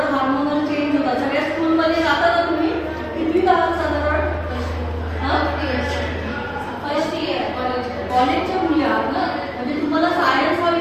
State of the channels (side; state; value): both; identical; correlation 1.00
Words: हार्मोनल चेंज होतात. सगळ्या स्कूलमध्ये जाता का तुम्ही? किती आहात साधारण? फर्स्ट इयर कॉलेजच्या मुली आहात ना. म्हणजे तुम्हाला सायन्स हा